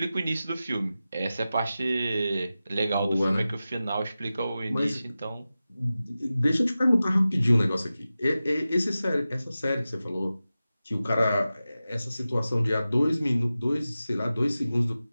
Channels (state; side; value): inverted; both; correlation -0.94